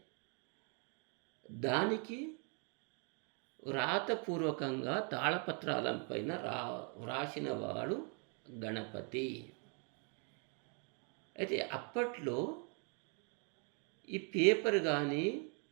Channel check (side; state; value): left; quieter; 38.1 dB